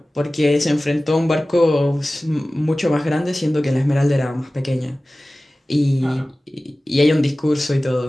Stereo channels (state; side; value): normal; both; correlation 0.97